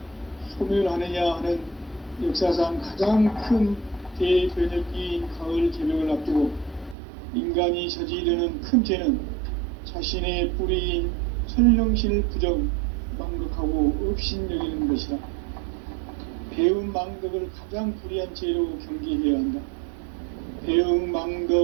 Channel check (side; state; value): left; drops out; at 7.0 s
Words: 소멸하느냐 하는 역사상 가장 큰 대변혁기인 가을 개벽을 앞두고 인간이 저지르는 큰 죄는 자신의 뿌리인 설령신을 부정, 망극하고 업신여기는 것이다. 배움 망덕을 가장 불의한 죄로 경계해야 한다. 배움